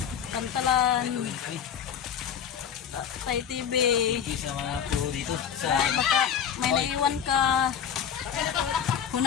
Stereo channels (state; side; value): quieter; right; 8.3 dB